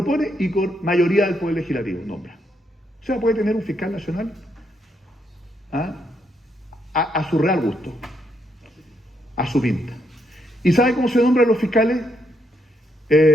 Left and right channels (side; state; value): both; normal; correlation 0.76